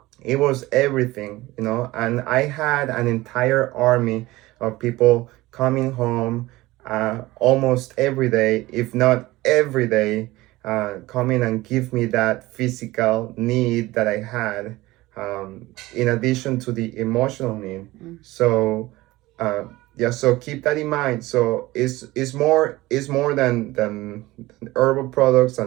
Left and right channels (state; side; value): quieter; left; 18.9 dB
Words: everything, and I had an entire army of people coming home almost every day, if not every day, coming and give me that physical need that I had, in addition to the emotional need. So so keep that in mind. So it's more than herbal products